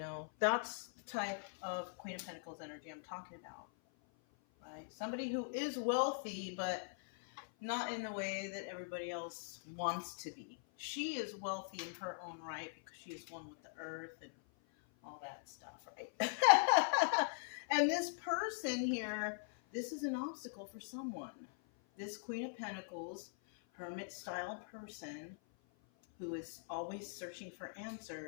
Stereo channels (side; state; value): right; silent; 50 dB below the other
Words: that's the type of Queen of Pentacles energy I'm talking about, right? Somebody who is wealthy, but not in the way that everybody else wants to be. She is wealthy in her own right because she is one with the earth and all that stuff, right? And this person here, this is an obstacle for someone. This Queen of Pentacles, hermit-style person who is always searching for